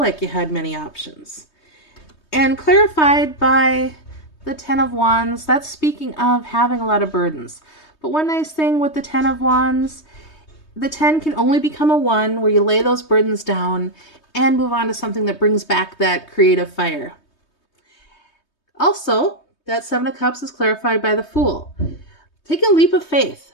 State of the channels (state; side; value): late; right; 3.2 ms